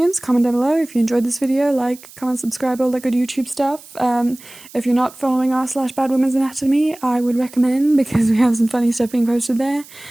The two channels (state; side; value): noise; right; hiss, 21 dB below the sound